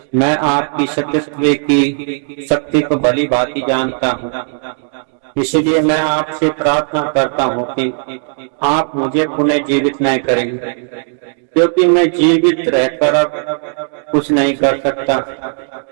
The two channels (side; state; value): left; silent; 57 dB below the other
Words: मैं आपकी सतीत्व की शक्ति को भली भांति जानता हूँ, इसलिए मैं आपसे प्रार्थना करता हूँ कि आप मुझे पुनः जीवित न करेंगे, क्योंकि मैं जीवित रहकर अब कुछ नहीं कर सकता,